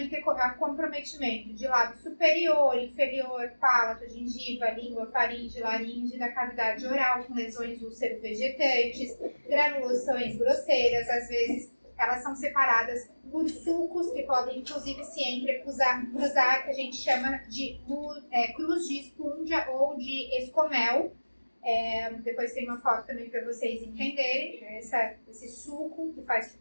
ter comprometimento de lábio superior, inferior, palato, gengiva, língua, faringe, laringe, da cavidade oral, com lesões úlcero-vegetantes, granulações grosseiras, às vezes elas são separadas por sulcos, que podem inclusive se entrecruzar, que a gente chama de cruz de espúndia ou de escomel. Depois tem uma foto também para vocês entenderem, esse sulco que faz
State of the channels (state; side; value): inverted; both; correlation -1.00